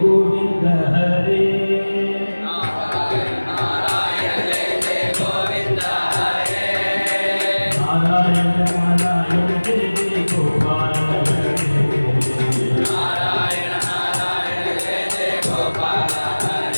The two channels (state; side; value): inverted; both; correlation -1.00